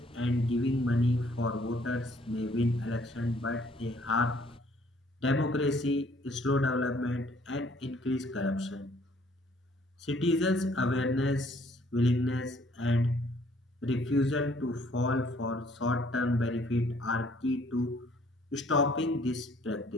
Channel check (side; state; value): both; normal; correlation 0.61